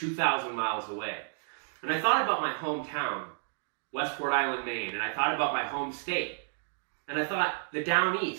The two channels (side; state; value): left; silent; digital silence